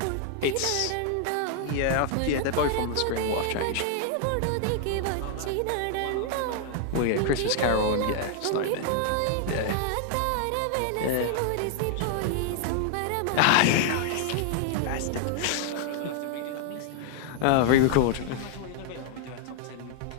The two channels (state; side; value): different; both; correlation 0.00